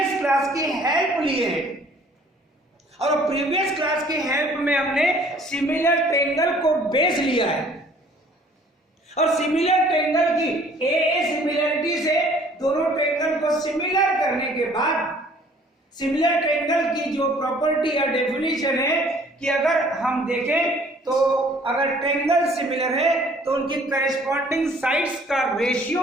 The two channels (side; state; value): both; normal; correlation 0.56